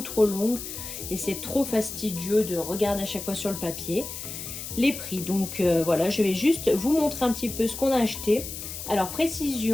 trop longue et c'est trop fastidieux de regarder à chaque fois sur le papier les prix. Donc voilà, je vais juste vous montrer un petit peu ce qu'on a acheté. Alors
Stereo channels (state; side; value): noise; left; hiss, 8 dB below the sound